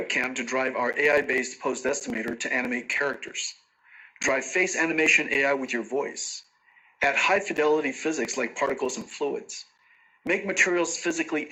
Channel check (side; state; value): both; identical; correlation 1.00